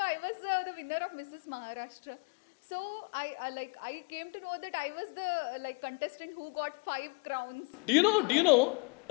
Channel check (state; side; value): quieter; right; 32.1 dB